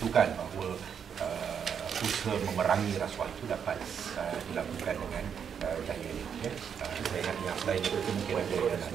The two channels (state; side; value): quieter; left; 7.5 dB